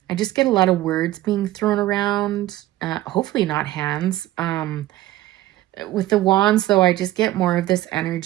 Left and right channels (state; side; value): quieter; left; 15.6 dB